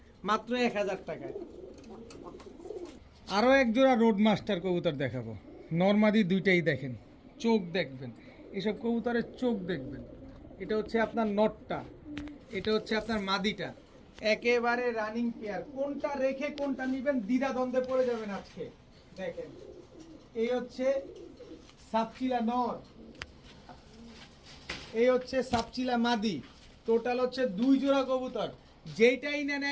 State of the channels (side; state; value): both; identical; correlation 1.00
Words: মাত্র 1000 টাকায়। আরও এক জোড়া রোড মাস্টার কবুতর দেখাবো, নরমাদি দুইটাই। দেখেন চোখ দেখবেন, এসব কবুতরের চোখ দেখবেন। এটা হচ্ছে আপনার নটটা, এটা হচ্ছে আপনার মাদিটা, একেবারে রানিং পেয়ার। কোনটা রেখে কোনটা নিবেন দ্বিধা দ্বন্দ্বে পড়ে যাবেন আজকে। দেখেন এই হচ্ছে সাপচিলা নর, এই হচ্ছে সাপচিলা মাদি। টোটাল হচ্ছে দুই জোড়া কবুতর, যেইটাই নেন